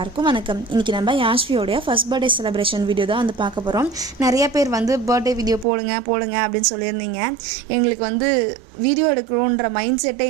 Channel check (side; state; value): left; drops out; at 5.7 s